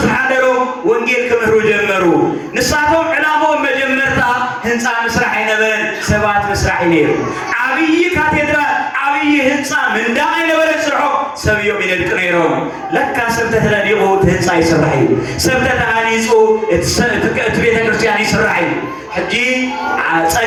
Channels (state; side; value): identical; both; correlation 1.00